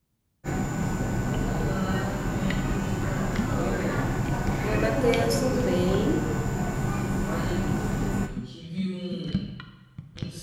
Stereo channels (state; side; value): identical; both; correlation 1.00